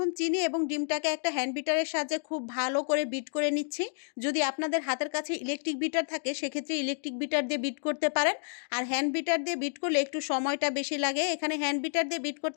চিনি এবং ডিমটাকে একটা হ্যান্ড বিটারের সাহায্যে খুব ভালো করে বিট করে নিচ্ছি। যদি আপনাদের হাতের কাছে ইলেকট্রিক বিটার থাকে সেক্ষেত্রে ইলেকট্রিক বিটার দিয়ে বিট করতে পারেন। আর হ্যান্ড বিটার দিয়ে বিট করলে একটু সময়টা বেশি লাগে। এখানে হ্যান্ড বিটার দিয়ে বিট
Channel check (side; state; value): right; silent; digital silence